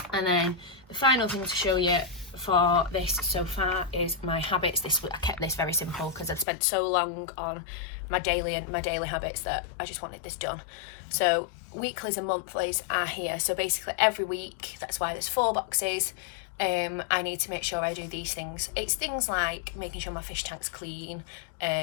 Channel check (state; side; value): drops out; right; at 6.5 s